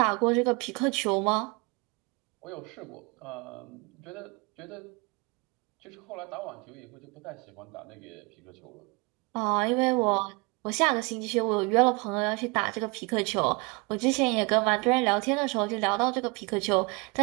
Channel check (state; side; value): quieter; left; 28.6 dB